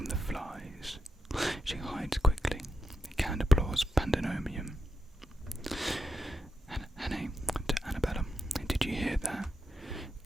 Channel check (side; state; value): both; normal; correlation 0.85